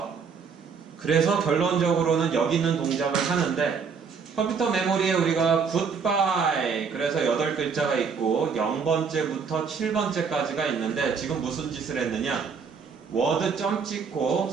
그래서 결론적으로는 여기 있는 동작을 하는데 컴퓨터 메모리에 우리가 goodbye 그래서 8글자가 있고 0번째부터 7번째까지가 있는데 지금 무슨 짓을 했느냐? 워드 점 찍고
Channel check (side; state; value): left; quieter; 5.9 dB